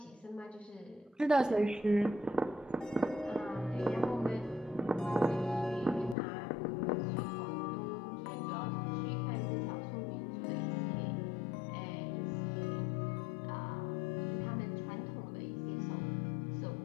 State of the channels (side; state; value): right; drops out; at 6.2 s